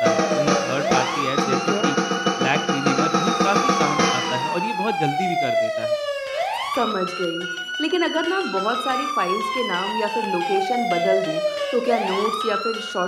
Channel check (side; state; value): both; identical; correlation 1.00